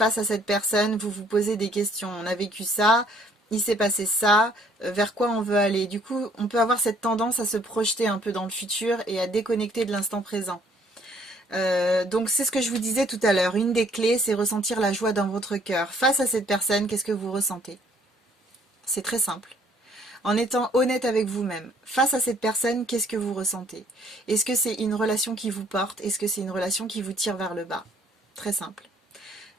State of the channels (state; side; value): normal; both; correlation 0.62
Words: à cette personne, vous vous posez des questions. On a vécu ça, il s'est passé ça, vers quoi on veut aller. Du coup, on peut avoir cette tendance à se projeter un peu dans le futur et à déconnecter de l'instant présent. Donc c'est ce que je vous disais tout à l'heure. Une des clés, c'est ressentir la joie dans votre cœur. Face à cette personne, qu'est-ce que vous ressentez? C'est très simple. En étant honnête avec vous-même, face à cette personne, qu'est-ce que vous ressentez? Est-ce que c'est une relation qui vous porte? Est-ce que c'est une relation qui vous tire vers le bas? Très simple.